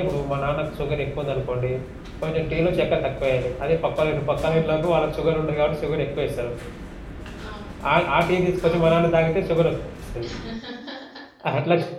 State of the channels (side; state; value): both; identical; correlation 1.00